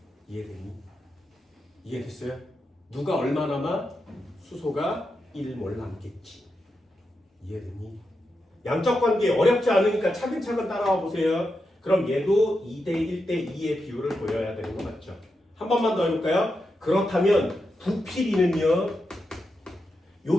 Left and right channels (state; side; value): normal; both; correlation 0.87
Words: 이해되니? 이해됐어요? 누가 얼마 남아? 수소가 1몰 남겠지. 이해되니? 양적 관계 어렵지 않으니까 차근차근 따라와 보세요. 그럼 얘도 2대 1대 2의 비율을 보여야 되는 거 맞죠? 한 번만 더 해볼까요? 그렇다면 부피비는요.